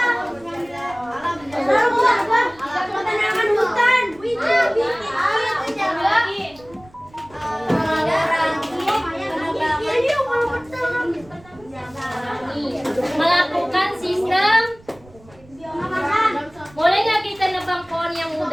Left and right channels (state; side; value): noise; right; rumble, 25 dB below the sound